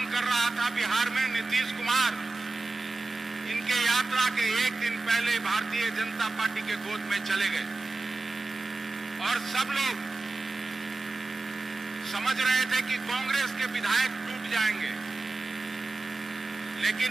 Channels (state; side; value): quieter; left; 3.3 dB